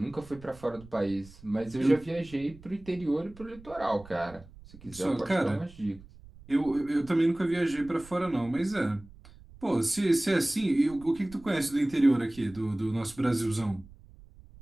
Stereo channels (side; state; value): right; noise; rumble, 21 dB below the sound